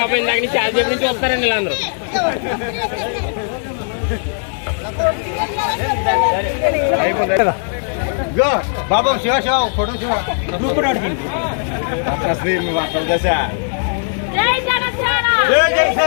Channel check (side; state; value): right; silent; digital silence